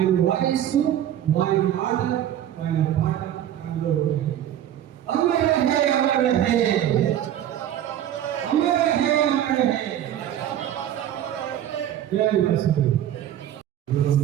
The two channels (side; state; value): left; quieter; 11.2 dB